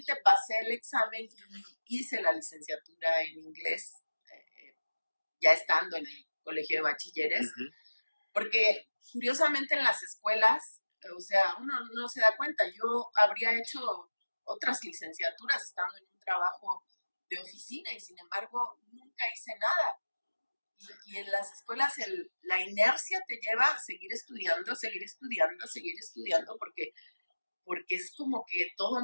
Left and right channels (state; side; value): inverted; both; correlation -1.00